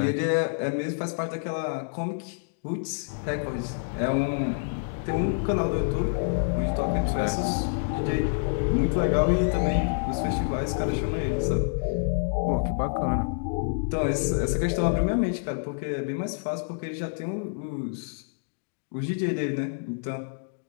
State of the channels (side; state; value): right; silent; digital silence